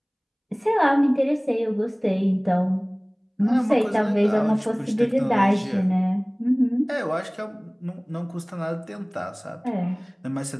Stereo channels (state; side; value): identical; both; correlation 1.00